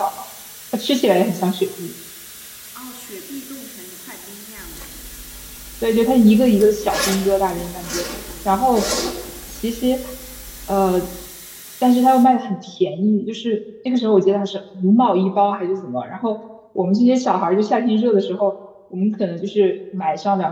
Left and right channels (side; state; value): both; identical; correlation 1.00